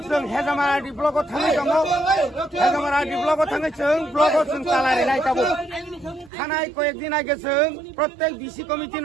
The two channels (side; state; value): left; drops out; at 6.3 s